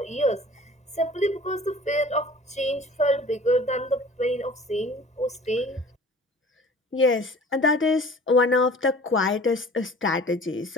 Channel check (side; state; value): both; normal; correlation 0.47